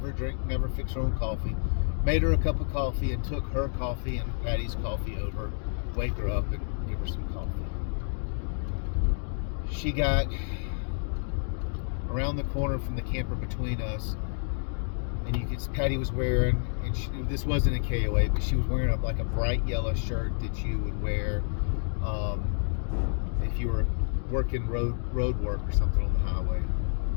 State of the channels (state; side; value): silent; right; 58 dB below the other